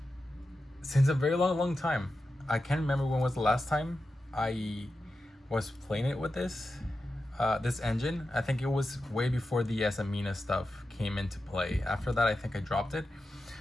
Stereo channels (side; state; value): both; normal; correlation 0.91